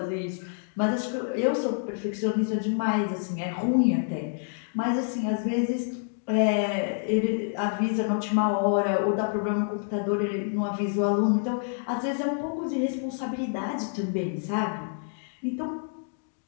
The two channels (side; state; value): right; silent; digital silence